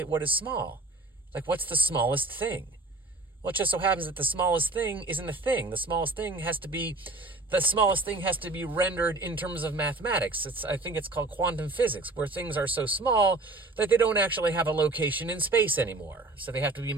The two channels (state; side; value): quieter; left; 3.0 dB